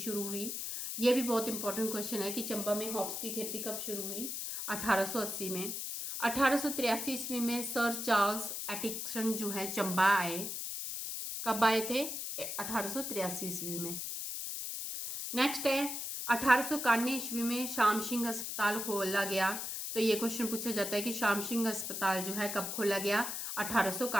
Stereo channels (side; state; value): left; noise; hiss, 4 dB below the sound